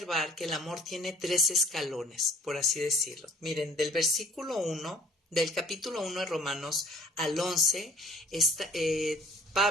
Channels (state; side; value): normal; both; correlation 0.53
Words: que el amor tiene 3 escalones, por así decirlo. Miren, del versículo 1, del capítulo 1 de Romanos al 11,